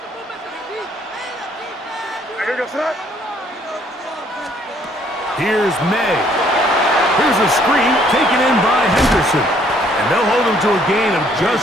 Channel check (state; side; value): normal; both; correlation 0.64